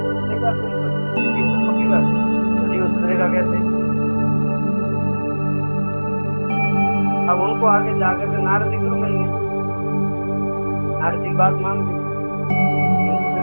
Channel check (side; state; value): both; inverted; correlation -1.00